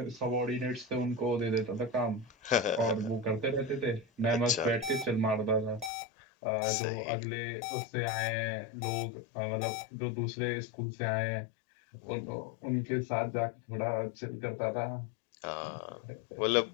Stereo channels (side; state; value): right; drops out; at 5.9 s